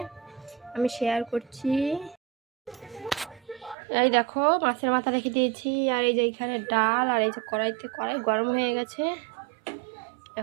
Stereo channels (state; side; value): drops out; left; at 3.8 s